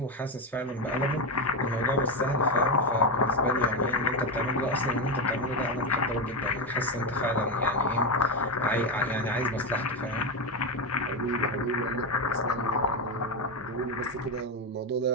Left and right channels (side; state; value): both; normal; correlation 0.12